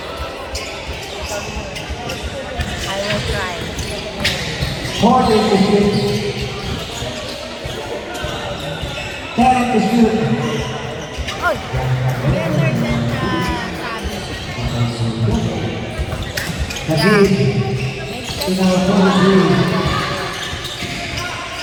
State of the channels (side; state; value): both; identical; correlation 1.00